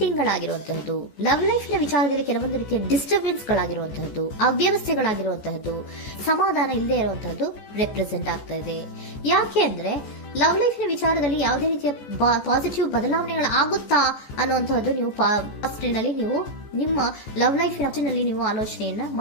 ಗಳಾಗಿರುವಂತಹದ್ದು, ಲವ್ ಲೈಫ್ ನ ವಿಚಾರದಲ್ಲಿ ಕೆಲವೊಂದು ರೀತಿಯ ಡಿಸ್ಟರ್ಬೆನ್ಸ್ ಗಳಾಗಿರುವಂತಹದ್ದು, ಅವ್ಯವಸ್ಥೆಗಳಾಗಿರುವಂತಹದ್ದು, ಸಮಾಧಾನ ಇಲ್ಲದೆ ಇರುವಂತಹದ್ದು ರೆಪ್ರೆಸೆಂಟ್ ಆಗ್ತಾ ಇದೆ. ಯಾಕೆ ಅಂದ್ರೆ ಲವ್ ಲೈಫ್ ನ ವಿಚಾರದಲ್ಲಿ ಯಾವುದೇ ರೀತಿಯ ಪಾಸಿಟಿವ್ ಬದಲಾವಣೆಗಳಾಗುತ್ತಾ ಅನ್ನುವಂತಹದ್ದು ನೀವು ಪಾಸ್ಟ್ನಲ್ಲಿ ನೀವು ನಿಮ್ಮ ಲವ್ ಲೈಫ್ ನಲ್ಲಿ ನೀವು ಆಲೋಚನೆಯನ್ನ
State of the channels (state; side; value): late; right; 14 ms